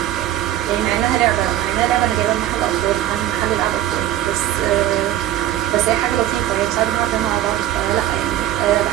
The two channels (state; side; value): quieter; left; 13.0 dB